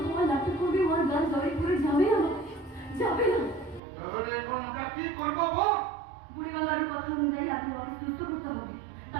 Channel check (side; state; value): left; drops out; at 3.8 s